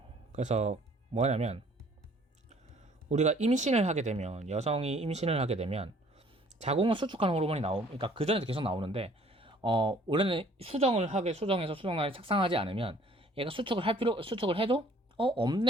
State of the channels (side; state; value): both; normal; correlation 0.57